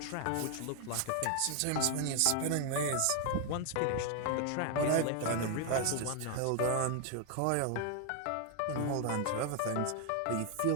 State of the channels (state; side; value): different; both; correlation 0.00